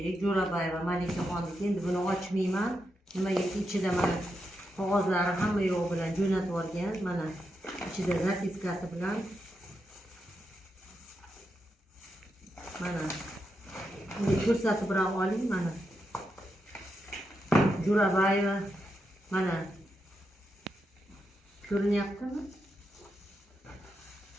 Jo'rabayeva Malikaxonniki. Endi buni ochmayman. Nimagaki ichida mana qog'ozlari hamma yo'q bilan jo'natib olgan. Mana ichida zapiskasi bilan mana buni ko'rsatib ham oling. Mana Jo'rabayeva mana ko'rinyaptimi?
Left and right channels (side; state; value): both; normal; correlation 0.85